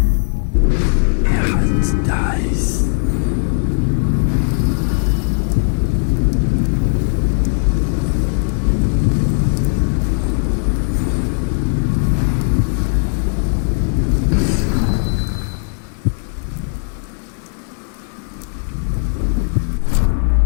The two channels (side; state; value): right; silent; 66 dB below the other